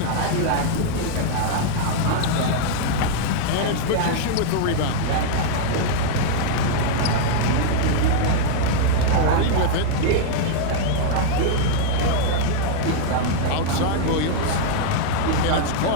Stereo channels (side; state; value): both; different; correlation -0.01